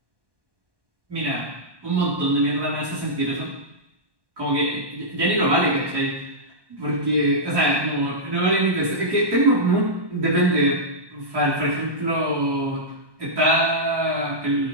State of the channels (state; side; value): late; left; 1.2 ms